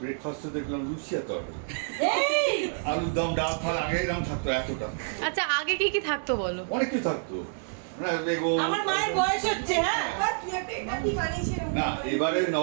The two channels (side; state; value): left; silent; digital silence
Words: ব্রেকফাস্টে দেখলাম লুচি আর তরকারি, আলুর দম, ডাল ফাল আগে এরকম থাকতো এতটা। আচ্ছা আগে কি কি থাকতো বলো? অনেক কিছু থাকতো, বেগুন। আমার মায়ের বয়স হচ্ছে, হ্যাঁ না, এবারে